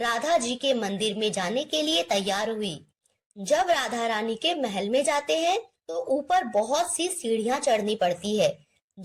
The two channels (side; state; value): both; identical; correlation 1.00